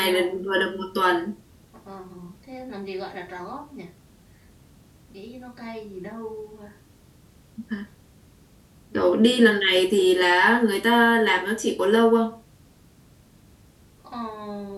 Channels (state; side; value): identical; both; correlation 1.00